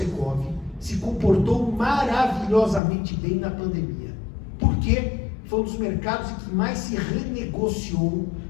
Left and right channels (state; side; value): drops out; right; at 2.8 s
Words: se comportou maravilhosamente bem na pandemia. Por quê? Foi um dos mercados em que mais se renegociou,